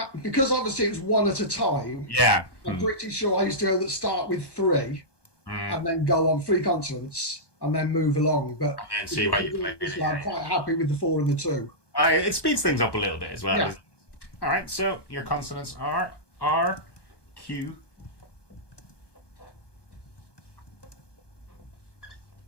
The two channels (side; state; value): right; late; 1.2 ms